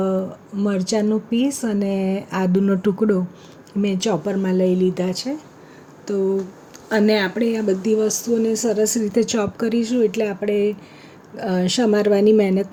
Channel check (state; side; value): identical; both; correlation 1.00